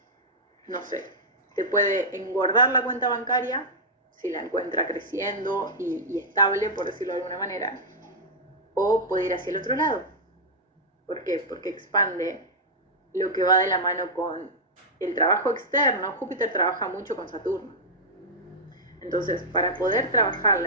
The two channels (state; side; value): normal; both; correlation -0.06